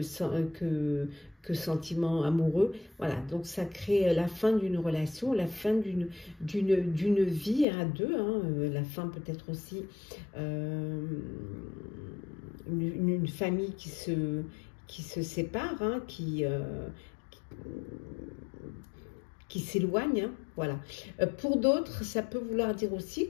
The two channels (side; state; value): right; drops out; at 7.7 s